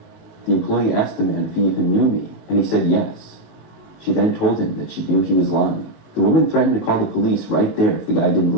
The employee asked the man if he even knew me, and he said yes. She then told him that she knew he was lying. The woman threatened to call the police right there if the guy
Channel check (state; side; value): late; right; 19 ms